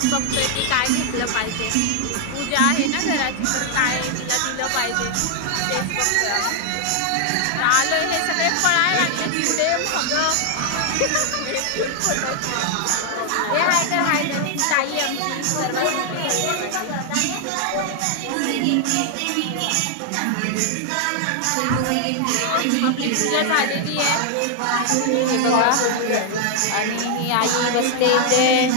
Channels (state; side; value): different; both; correlation 0.00